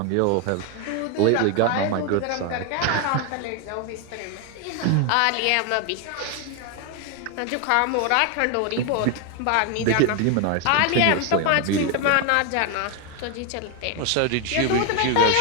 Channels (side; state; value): both; different; correlation 0.01